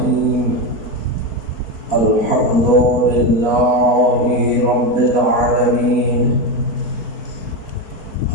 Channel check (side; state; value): right; late; 4.5 ms